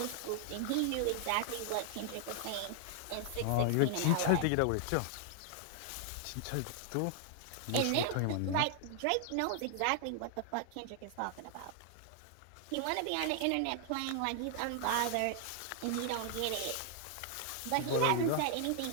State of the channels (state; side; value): different; both; correlation 0.00